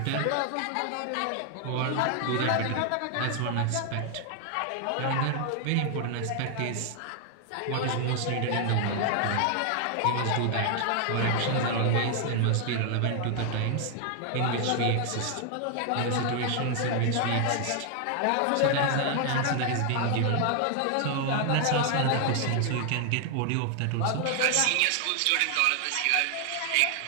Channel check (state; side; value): different; both; correlation 0.00